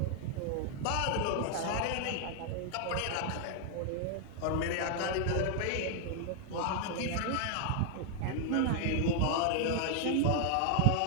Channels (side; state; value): both; different; correlation 0.00